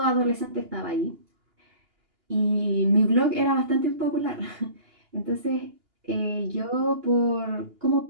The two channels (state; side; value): late; left; 2.8 ms